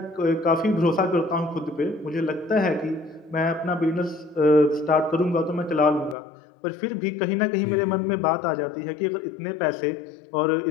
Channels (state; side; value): drops out; right; at 6.2 s